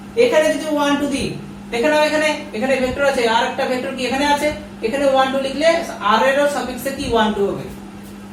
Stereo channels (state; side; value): identical; both; correlation 1.00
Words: এখানে যদি 1 2 দিই, এখানে ভেক্টর আছে, আর একটা ভেক্টর কি এখানে আছে, এখানে 1 2 লিখলে r এর সাফিক্সে কি 1 2 হবে।